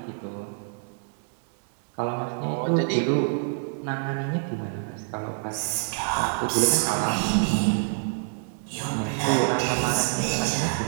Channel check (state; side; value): silent; left; 60 dB below the other